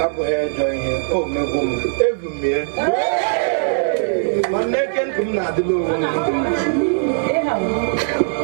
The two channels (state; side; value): silent; left; 66 dB below the other